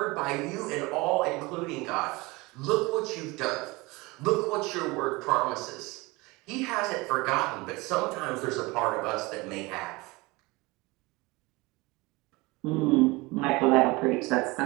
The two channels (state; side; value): quieter; left; 23.5 dB